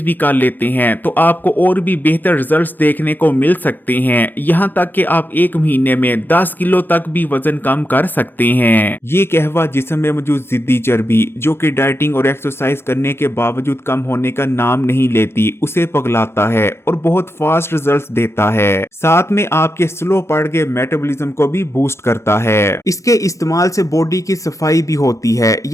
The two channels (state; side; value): normal; both; correlation 0.87